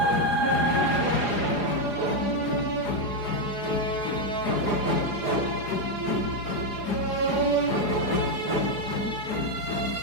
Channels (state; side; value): late; right; 4.9 ms